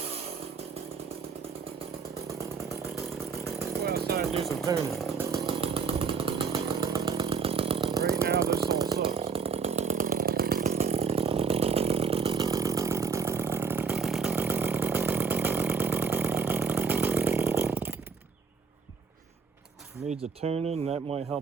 Do some tuning. Right now this all sucks. Needs a tuning, that might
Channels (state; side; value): quieter; left; 5.7 dB